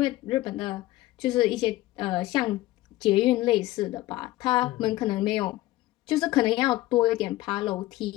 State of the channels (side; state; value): right; quieter; 17.1 dB